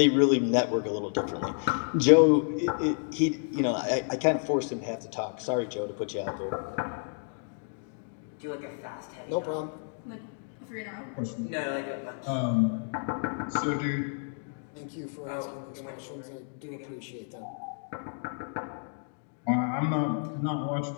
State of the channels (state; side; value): silent; right; 56 dB below the other